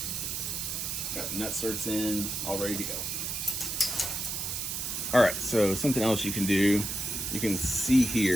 got the nut certs in, all ready to go. All right, so something else you can do, you can see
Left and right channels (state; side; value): noise; right; hiss, 3 dB below the sound